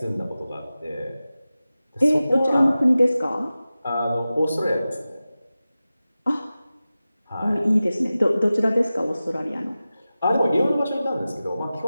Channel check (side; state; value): both; inverted; correlation -0.95